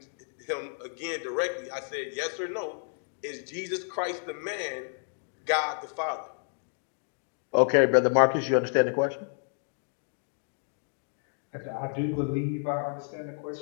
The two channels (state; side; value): silent; right; 58 dB below the other